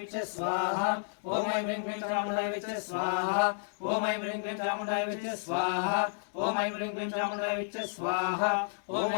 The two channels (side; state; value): right; silent; digital silence